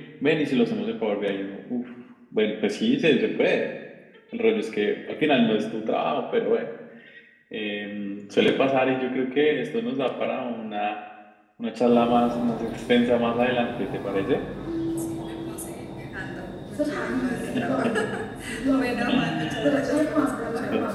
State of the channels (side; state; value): both; identical; correlation 1.00